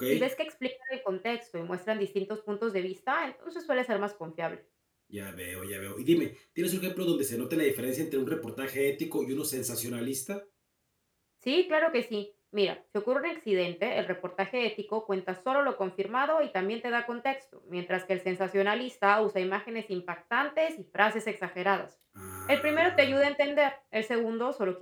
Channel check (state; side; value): identical; both; correlation 1.00